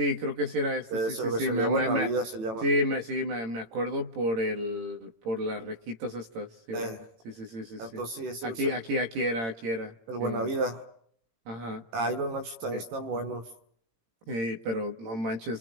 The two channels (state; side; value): late; left; 18 ms